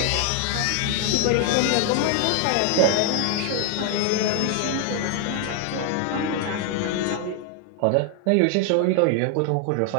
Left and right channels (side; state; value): both; different; correlation 0.00